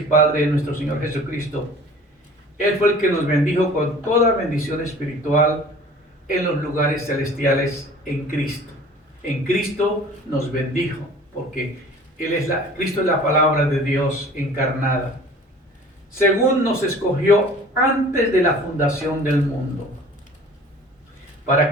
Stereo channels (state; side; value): normal; both; correlation 0.46